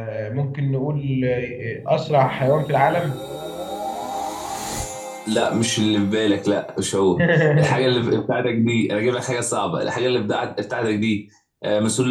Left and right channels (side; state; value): both; identical; correlation 1.00